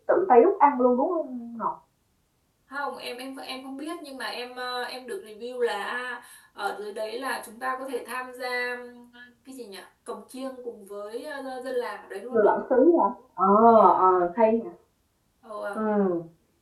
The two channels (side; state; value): both; identical; correlation 1.00